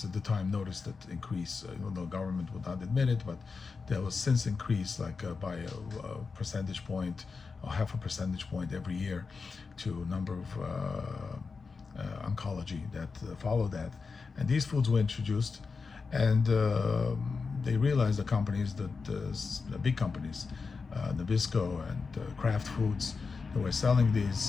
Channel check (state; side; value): quieter; right; 4.7 dB